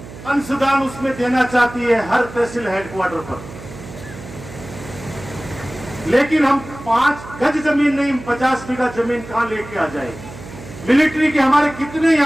अंशदान उसमें देना चाहती है हर तहसील हेडक्वार्टर पर, लेकिन हम 5 गज जमीन नहीं, 50 बीघा जमीन कहां लेके आ जाए? मिलिट्री के हमारे कितने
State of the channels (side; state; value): right; noise; hum, 15 dB below the sound